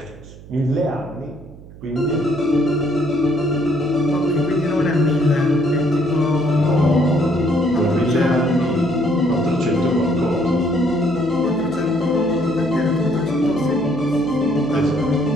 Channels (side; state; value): right; noise; hum, 19 dB below the sound